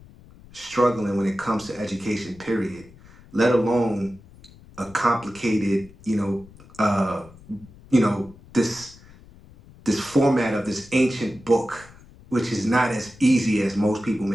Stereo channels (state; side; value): noise; left; rumble, 23 dB below the sound